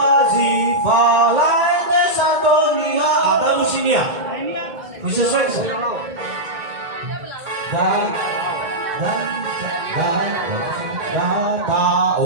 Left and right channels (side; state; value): left; late; 2.2 ms